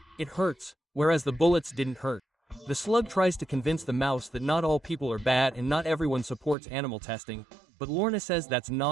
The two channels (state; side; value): drops out; left; at 6.6 s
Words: it hurts, whereas the bullets didn't hurt. The slug tries to convince the mouse that not all people are bad and not everyone supports animal testing, but Lorna says that's